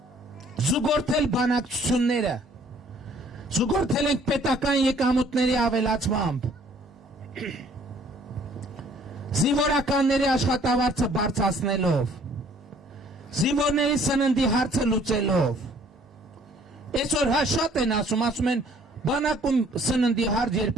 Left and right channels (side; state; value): both; normal; correlation 0.58